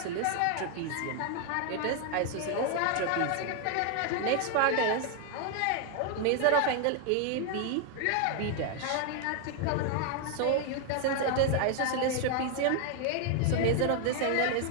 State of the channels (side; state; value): both; different; correlation 0.00